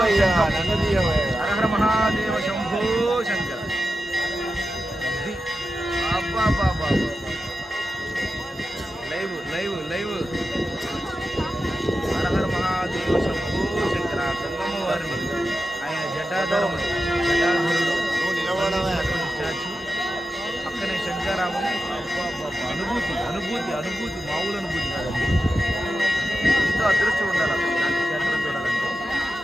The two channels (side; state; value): both; normal; correlation 0.90